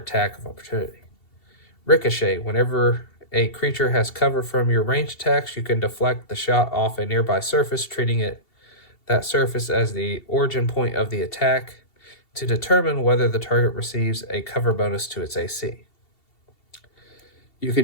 of opportunity. Ricochet. Whenever a creature has cover from your ranged attacks, you can deflect the shot off a nearby surface, treating that surface as the origin point of the attack to determine whether the target receives a cover bonus to its AC. You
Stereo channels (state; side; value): late; right; 2.7 ms